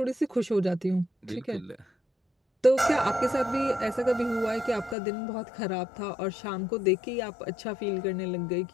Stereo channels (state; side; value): drops out; right; at 5.0 s